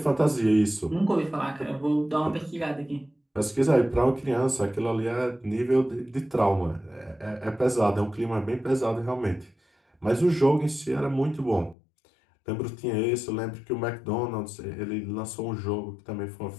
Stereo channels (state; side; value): drops out; right; at 11.8 s